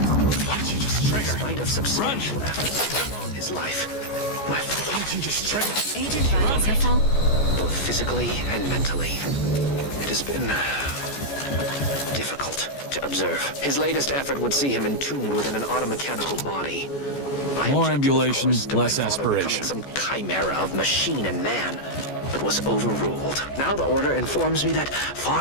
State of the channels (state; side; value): late; right; 14 ms